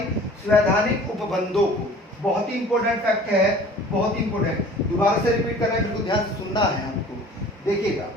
उपबंधों को। बहुत ही इंपॉर्टेंट फैक्ट है, बहुत इंपॉर्टेंट, दोबारा से रिपीट करना है, बिल्कुल ध्यान से सुनना है आपको। देखिएगा,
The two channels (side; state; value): both; normal; correlation 0.47